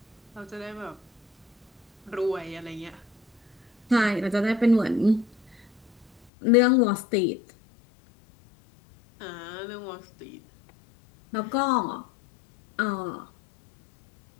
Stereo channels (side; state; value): right; drops out; at 6.1 s